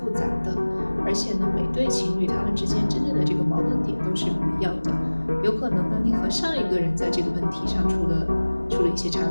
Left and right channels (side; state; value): both; inverted; correlation -1.00